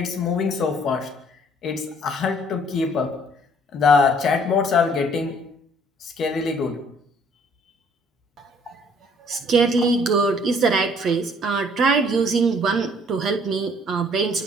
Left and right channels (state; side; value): normal; both; correlation 0.59